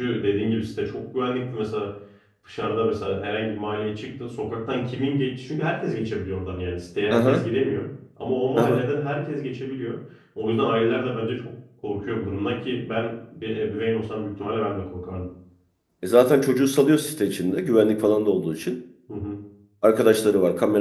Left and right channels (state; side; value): identical; both; correlation 1.00